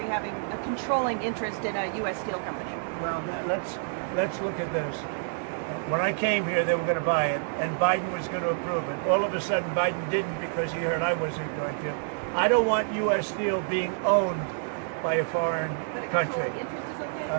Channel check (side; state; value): left; silent; digital silence